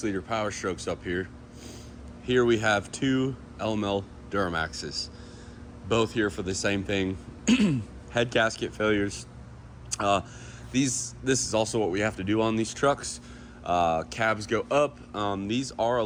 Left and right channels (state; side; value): identical; both; correlation 1.00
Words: Power Strokes up here. Here we have two LML Duramaxes, both here for the same thing. Head gasket failures. This is also what we have to do on these trucks. Cabs go up. These are a